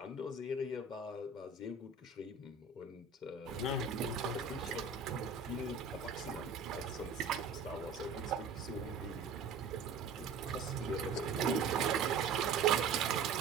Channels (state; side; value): quieter; left; 4.9 dB